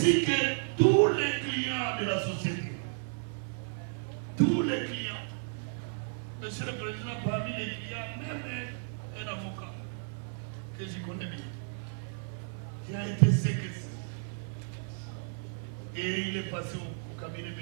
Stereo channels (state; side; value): silent; left; 56 dB below the other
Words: que tous les clients de la société. Tous les clients. Monsieur le Président, parmi les clients, même un avocat que je connais bien, qui a été séquestré. Et il est passé au cabinet